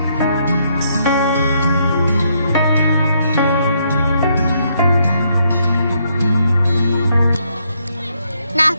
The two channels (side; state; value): both; inverted; correlation -0.74